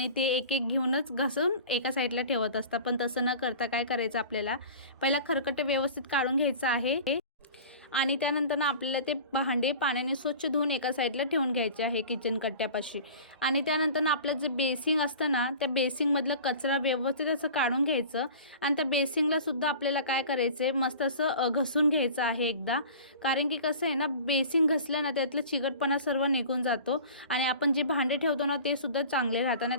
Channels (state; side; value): inverted; both; correlation -0.40